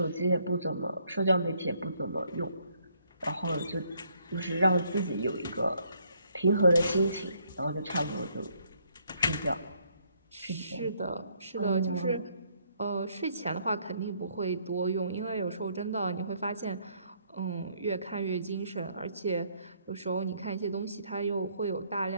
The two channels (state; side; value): inverted; both; correlation -0.69